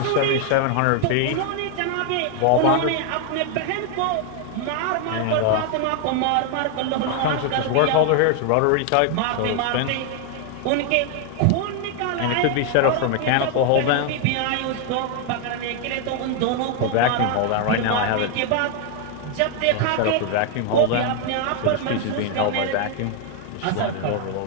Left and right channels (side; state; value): both; different; correlation 0.00